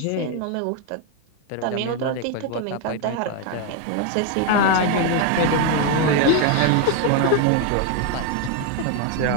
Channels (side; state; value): both; different; correlation 0.01